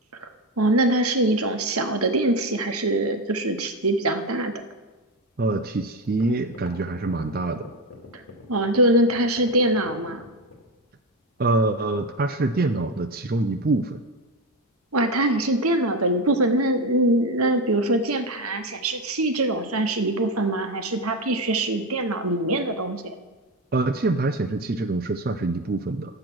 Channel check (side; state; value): both; normal; correlation 0.16